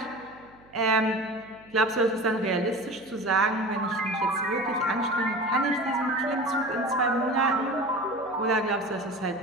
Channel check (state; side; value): noise; right; hum, 27 dB below the sound